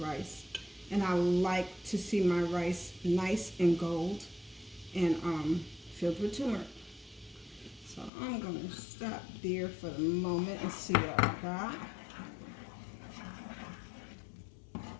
rice. And I like to see my rice nice and gold and filled with turmeric. So I'm going to stop there for the moment and see what I got.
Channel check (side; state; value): right; drops out; at 8.1 s